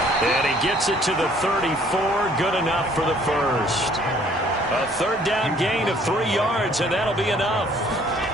And he gets it to the 34. Good enough for the first. A 3rd down gain of 3 yards, and that'll be enough.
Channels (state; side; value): normal; both; correlation 0.59